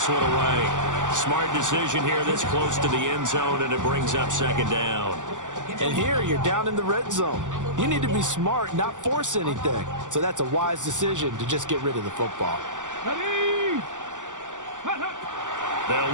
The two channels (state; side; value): late; left; 0.87 ms